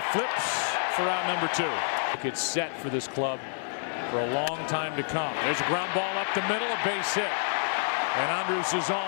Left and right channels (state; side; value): silent; right; digital silence